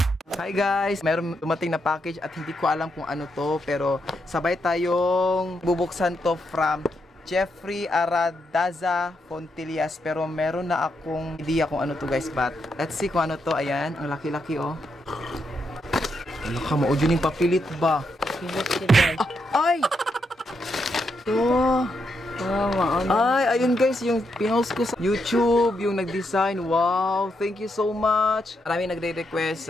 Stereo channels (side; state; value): both; normal; correlation 0.81